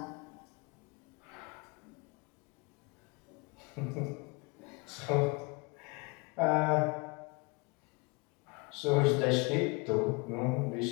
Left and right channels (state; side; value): quieter; right; 28.4 dB